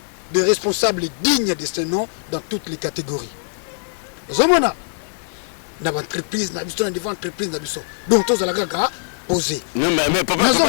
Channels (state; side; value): silent; right; digital silence